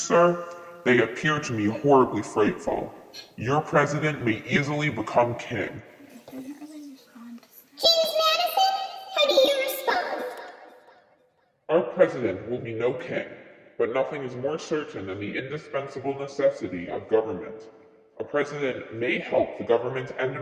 they appear to me horribly frightful. Your president may easily become king. James Madison, how do you respond? Our president will be no king, but nothing is more certain than the indispensable necessity of government. A president may help the government and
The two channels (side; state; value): both; identical; correlation 1.00